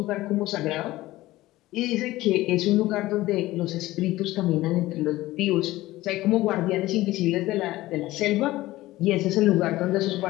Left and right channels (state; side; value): quieter; right; 17.3 dB